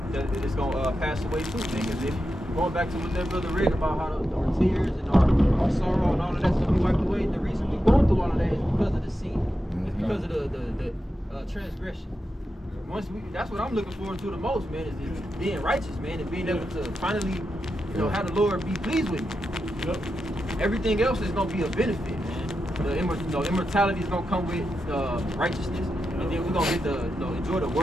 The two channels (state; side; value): normal; both; correlation 0.88